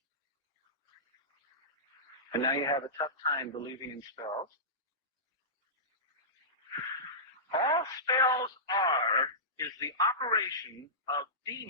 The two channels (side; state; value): both; normal; correlation -0.18